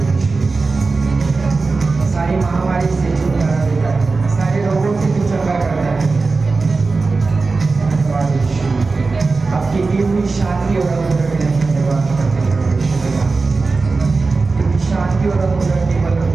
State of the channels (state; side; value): quieter; left; 4.0 dB